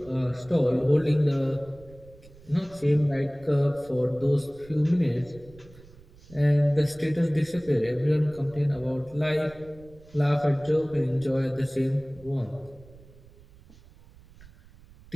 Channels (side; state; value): right; noise; rumble, 23 dB below the sound